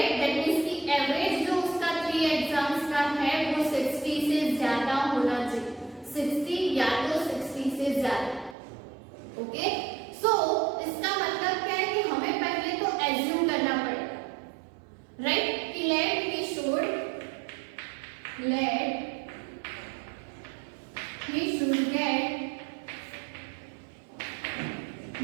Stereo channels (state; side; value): drops out; left; at 8.6 s